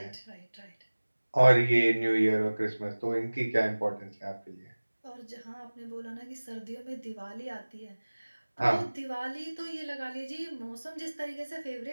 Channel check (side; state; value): both; inverted; correlation -1.00